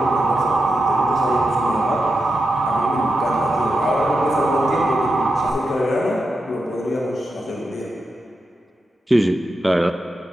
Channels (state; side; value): normal; both; correlation 0.88